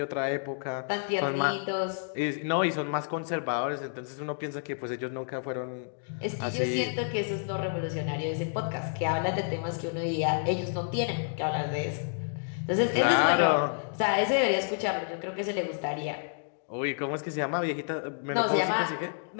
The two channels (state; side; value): silent; right; digital silence